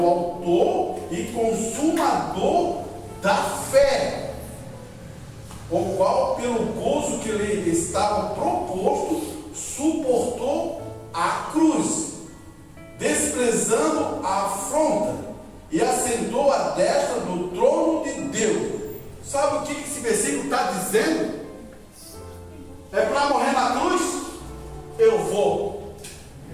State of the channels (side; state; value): both; identical; correlation 1.00